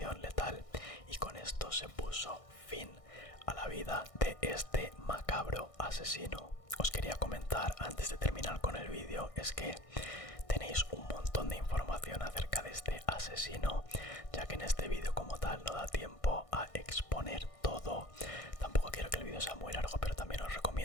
letal, y con esto se puso fin a la vida de este macabro asesino. Os quería comentar antes de terminar con el vídeo, es que tenéis un montón de información acerca de este asesino, ya que en este vídeo como tal no da tiempo a exponer todo. Tampoco quiero que el vídeo sea muy largo, pero también os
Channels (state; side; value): late; right; 1.6 ms